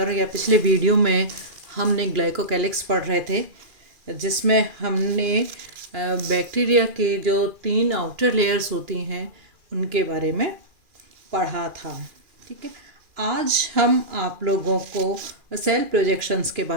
या पिछले वीडियो में हमने ग्लाइकोकैलिक्स पढ़ रहे थे, जिसमें हमने बैक्टीरिया के जो 3 आउटर लेयर्स होती हैं उनके बारे में पढ़ा था। ठीक है, आज हम आप लोगों को सेल प्रोजेक्शंस के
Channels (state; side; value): late; left; 2.4 ms